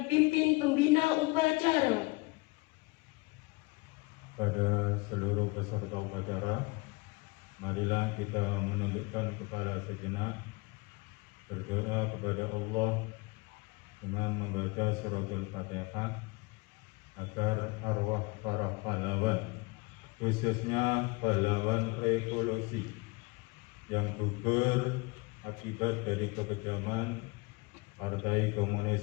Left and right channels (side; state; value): right; quieter; 26.2 dB